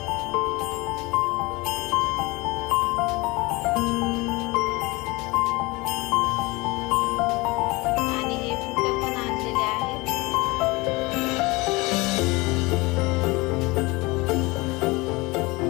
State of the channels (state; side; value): quieter; right; 23.8 dB